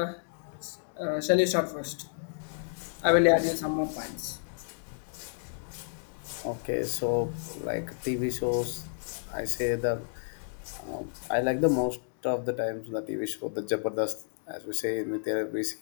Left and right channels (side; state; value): right; silent; digital silence